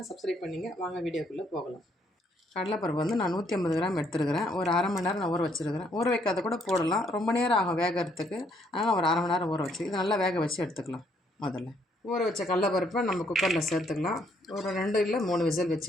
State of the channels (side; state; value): both; normal; correlation 0.70